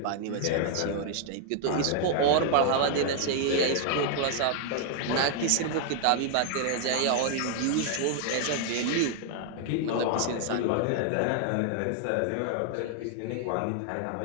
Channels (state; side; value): different; both; correlation 0.00